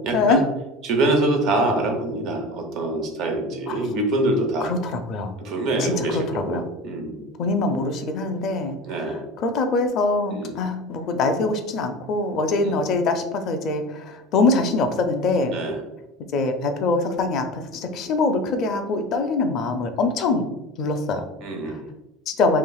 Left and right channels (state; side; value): normal; both; correlation 0.32